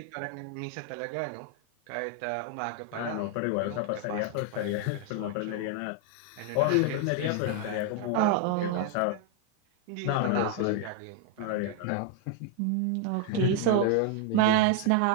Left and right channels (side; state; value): both; different; correlation 0.00